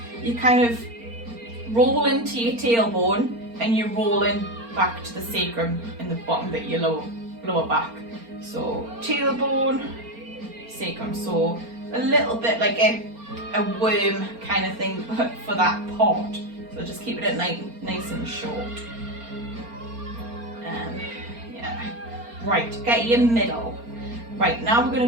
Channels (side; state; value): left; late; 4.3 ms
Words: you kind of roll into your tailbone and you're rolling back to the sacrum in the bottom bit of your lower back. So tailbone, sacrum, so a little bit like a worm kind of thing, but for that part. So just keep it nice and short. Right, get your middle. Right, now we're